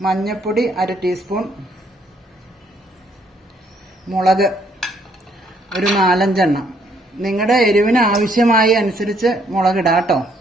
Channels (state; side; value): normal; both; correlation 0.68